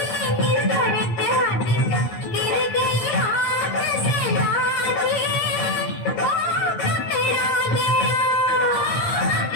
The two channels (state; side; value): late; right; 8.8 ms